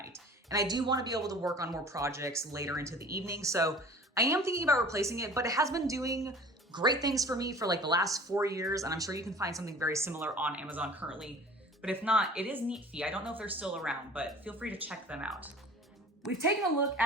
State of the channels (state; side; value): normal; both; correlation 0.44